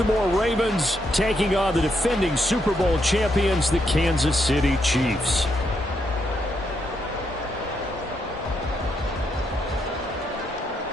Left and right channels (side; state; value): both; normal; correlation 0.79